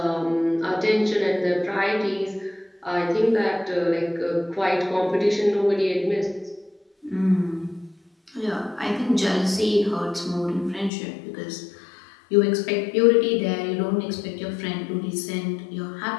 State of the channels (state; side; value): drops out; right; at 10.9 s